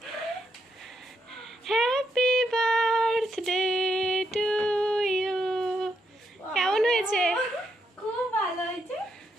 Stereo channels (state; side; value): normal; both; correlation 0.79